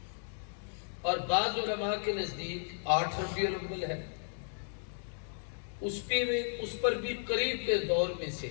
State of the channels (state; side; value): silent; right; digital silence